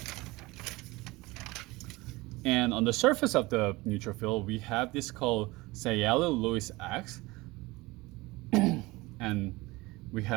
And on the surface of the neutrophil, we have this called Cielo-Lewis X, and we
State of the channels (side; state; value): left; quieter; 21.7 dB